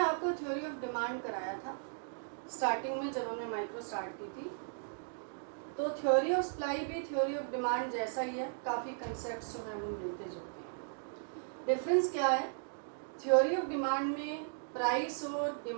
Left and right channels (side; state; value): left; silent; digital silence